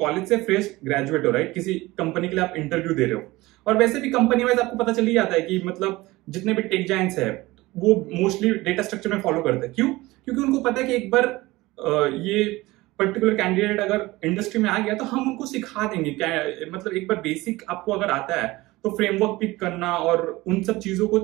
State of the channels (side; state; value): left; quieter; 19.9 dB